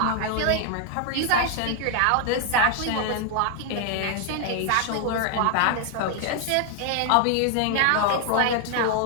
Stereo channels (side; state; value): both; different; correlation 0.00